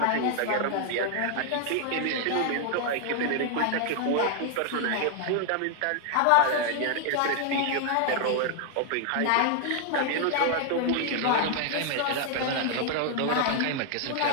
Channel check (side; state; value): both; different; correlation 0.00